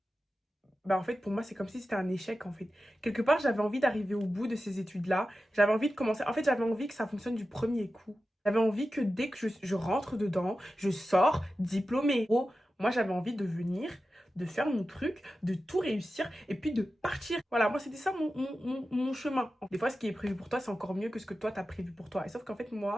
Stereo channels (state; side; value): normal; both; correlation 0.93